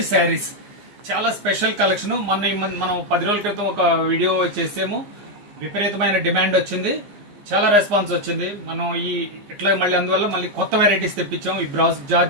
శారీస్, చాలా స్పెషల్ కలెక్షన్. మనం 10 రోజుల క్రితం ఒక వీడియో చేసాము. విపరీతమైన డిమాండ్ వచ్చింది, చాలా రెస్పాన్స్ వచ్చింది. మనం ఇట్లా అందువల్ల మళ్ళీ కొత్త వెరైటీస్ తెప్పించాం. ఈ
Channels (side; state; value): left; late; 15 ms